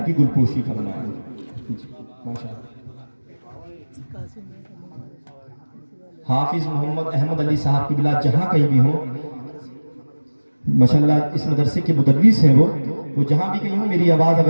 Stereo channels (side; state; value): both; inverted; correlation -1.00